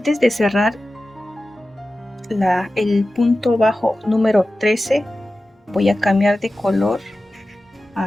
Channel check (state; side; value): normal; both; correlation 0.95